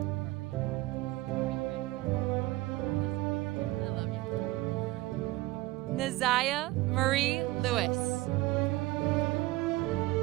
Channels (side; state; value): left; quieter; 19.2 dB